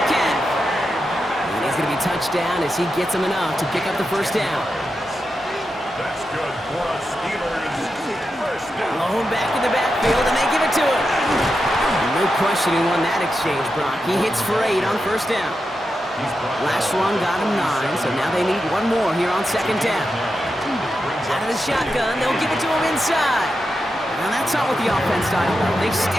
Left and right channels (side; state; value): both; normal; correlation 0.88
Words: And he's going to be touchdown as he gets him enough to pick up the first down. That's good for us Steelers. Blown back in the backfield, and they give it to him. No question he won that exchange, Brock. He hits for 8 on first down. Last run got him 9, so now they need one more here on second down. Out of the shotgun, they'll give it to him inside. Now that's not what the offense style does. They